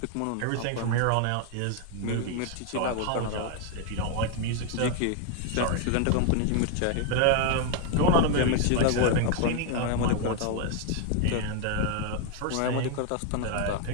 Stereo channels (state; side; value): different; both; correlation 0.01